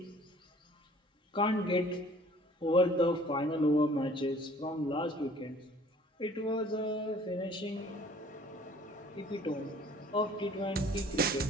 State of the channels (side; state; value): both; normal; correlation 0.53